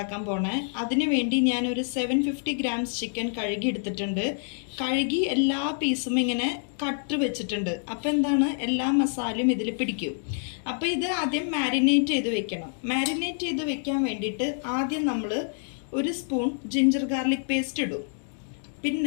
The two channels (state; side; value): silent; right; 60 dB below the other